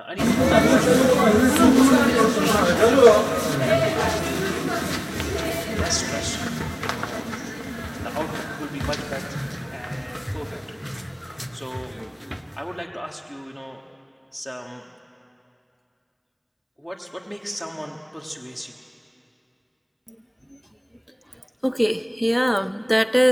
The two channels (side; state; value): both; identical; correlation 1.00